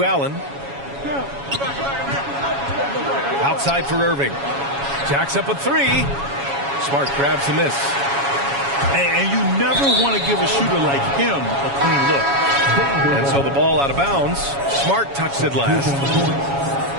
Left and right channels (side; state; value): left; late; 7.2 ms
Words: Allen. Outside for Irving. Jacks up a three. Smart grabs the miss. And you never want to give a shooter like him a clean look. And so the ball out of bounds. Smart touched it last.